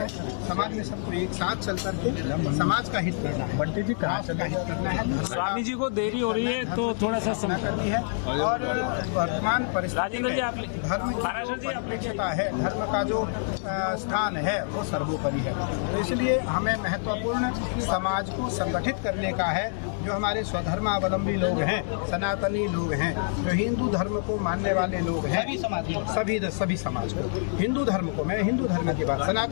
समाज में सबको एक साथ चल करके समाज का हित करना है, बढ़ती थी राष्ट्र का हित करना है। स्वामी जी को देरी हो रही है तो थोड़ा सा समय करनी है। और वर्तमान परिस्थिति में धर्म का है, धर्म का जो स्थान है वो सर्वोपरि है। तो इसलिए हमें महत्वपूर्ण समाज को संगठित करने का है। जो हमारे स्वधर्मावलंबी लोग हैं, सनातनी लोग हैं, जो हिंदू धर्म को मानने वाले लोग हैं, सभी समाज को, हिंदू धर्म को, मैं हिंदू धर्म की बात,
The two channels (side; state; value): right; silent; digital silence